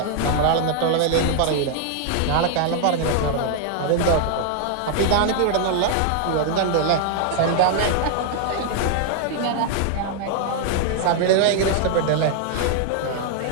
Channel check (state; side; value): different; both; correlation 0.00